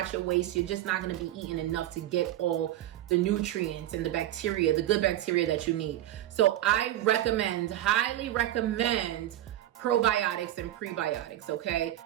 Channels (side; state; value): left; quieter; 13.4 dB